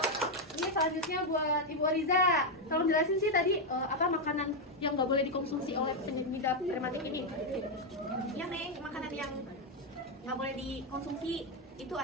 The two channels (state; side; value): normal; both; correlation 0.03